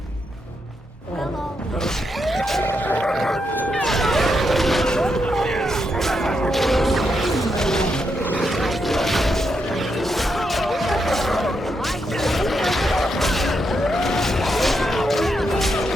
Well, all right.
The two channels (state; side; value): normal; both; correlation 0.82